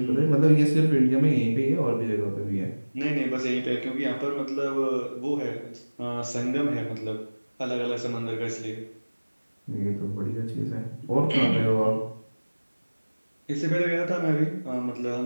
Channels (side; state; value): both; inverted; correlation -1.00